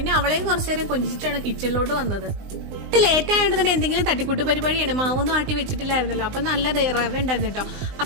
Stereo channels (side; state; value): left; late; 19 ms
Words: അവളെയും കുറച്ചു നേരം കൊഞ്ചിച്ചിട്ടാണ് കിച്ചണിലോട്ട് വന്നത്. ലേറ്റ് ആയിട്ട് തന്നെ എന്തെങ്കിലും തട്ടിക്കൂട്ട് പരിപാടിയാണ്. മാവൊന്നും ആട്ടി വെച്ചിട്ടില്ലായിരുന്നല്ലോ. അപ്പൊ നല്ല റവ ഉണ്ടായിരുന്നു കേട്ടോ.